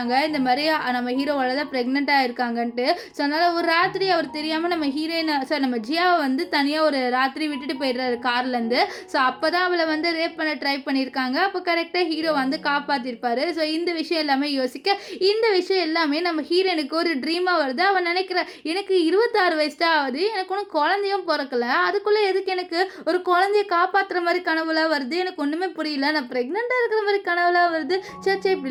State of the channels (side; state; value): both; identical; correlation 1.00